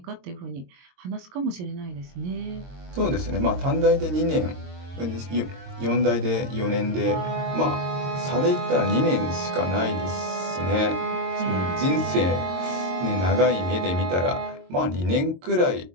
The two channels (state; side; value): late; left; 22 ms